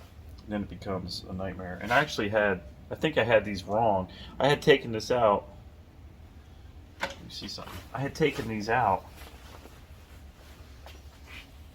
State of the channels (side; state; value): both; identical; correlation 1.00